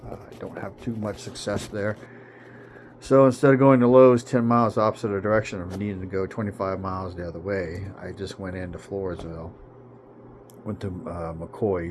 I don't have too much success there. So instead of going to Lowe's 10 miles opposite the direction of needing to go 25 miles the other way, I just went into Floresville, went to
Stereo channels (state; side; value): identical; both; correlation 1.00